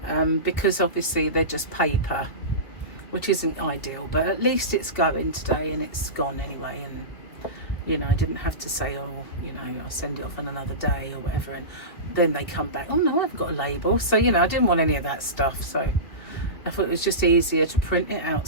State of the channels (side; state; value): right; late; 2.7 ms